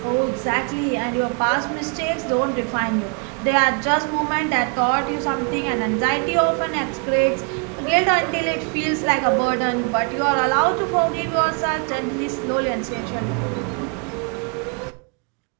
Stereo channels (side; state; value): left; quieter; 37.8 dB